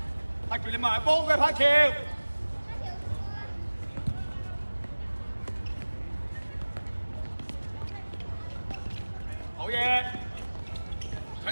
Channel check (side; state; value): both; inverted; correlation -1.00